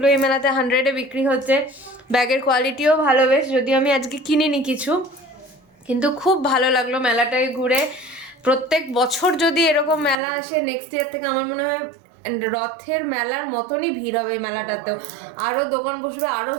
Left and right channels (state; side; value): drops out; left; at 10.2 s